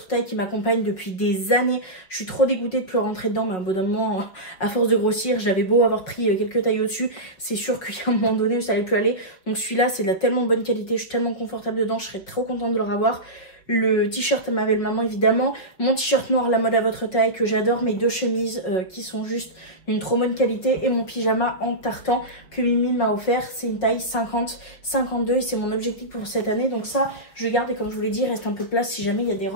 taille, qui m'accompagne depuis des années. Je suis trop dégoûtée de plus rentrer dedans, mais à un bon moment, à force de grossir, j'avais beau avoir pris quelques tailles au-dessus, c'est sûr qu'il y a un moment donné où ça allait plus aller. Donc celui-là, c'est de la tellement bonne qualité, je suis tellement confortable dedans, je serais trop contente de le revoir. Le t-shirt à ma belle maman évidemment, mon t-shirt noir La Mode à votre taille que j'adore, mes 2 chemises qui sont juste d'une trop bonne qualité, et mon pyjama en tartan que Mimi m'a offert. C'est une taille 50-52 et c'est mon objectif pour cette année. Donc ça je garde, et comme je vous l'ai dit, il reste un peu de place si jamais il y a des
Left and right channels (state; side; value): late; right; 5.3 ms